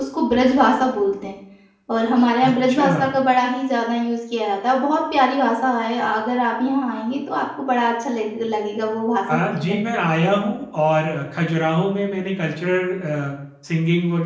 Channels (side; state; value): both; identical; correlation 1.00